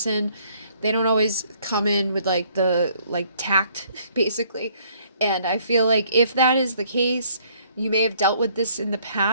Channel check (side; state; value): both; inverted; correlation -0.63